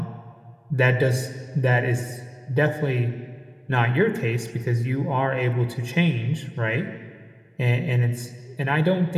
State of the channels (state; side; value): identical; both; correlation 1.00